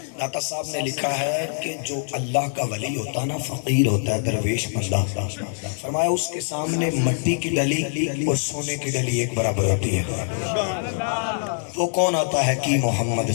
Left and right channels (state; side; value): silent; right; digital silence